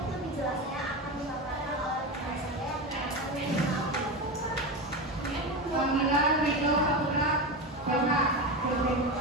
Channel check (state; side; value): normal; both; correlation 0.20